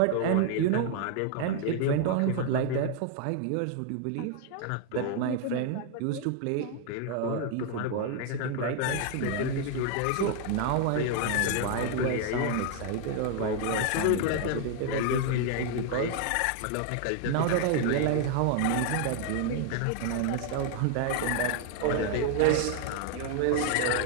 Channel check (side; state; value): both; different; correlation 0.00